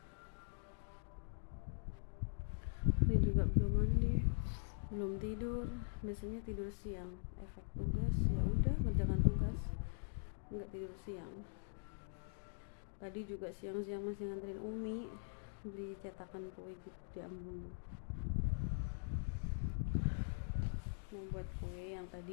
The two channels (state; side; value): silent; right; digital silence